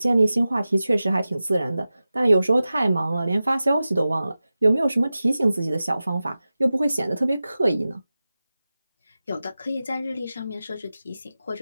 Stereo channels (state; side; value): inverted; both; correlation -0.95